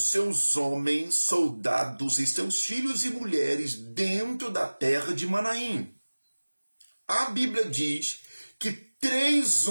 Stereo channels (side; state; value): both; inverted; correlation -1.00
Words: homens, soldados e seus filhos e mulheres dentro da terra de Manaim. A Bíblia diz que 3